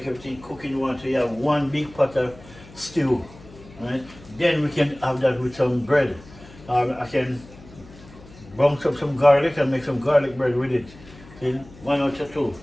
everything cooking one. So you have one big pot of stew, right? Then we can have that with some bread. I can bounce up some garlic and make some garlic bread with it. See? 1 or 2.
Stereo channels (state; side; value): noise; left; hum, 20 dB below the sound